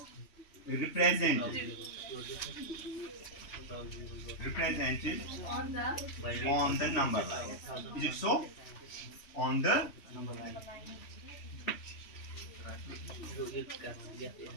represented on the number line. Is it so? On the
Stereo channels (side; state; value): right; late; 3.1 ms